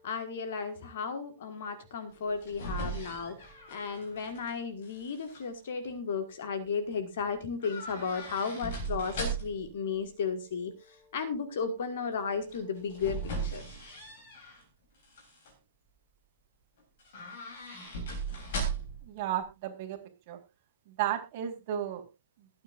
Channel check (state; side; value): inverted; both; correlation -0.37